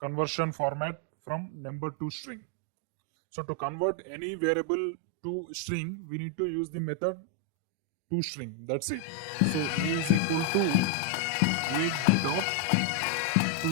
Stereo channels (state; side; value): different; both; correlation 0.01